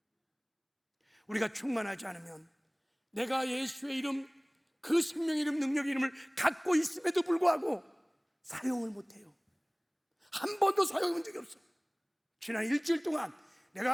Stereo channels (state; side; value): identical; both; correlation 1.00